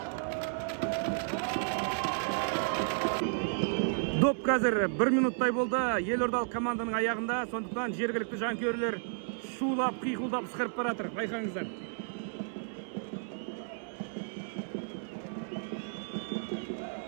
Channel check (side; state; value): left; silent; 56 dB below the other